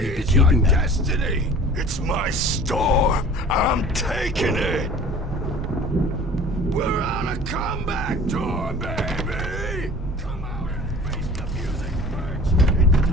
be keeping them. Destiny. It's my storm. I'm taking it. We're on a comeback tour, baby. Come out and face the music, Birch. It's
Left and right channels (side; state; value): both; normal; correlation 0.45